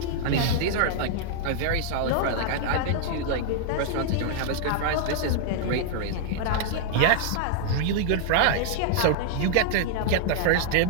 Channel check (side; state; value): both; different; correlation -0.01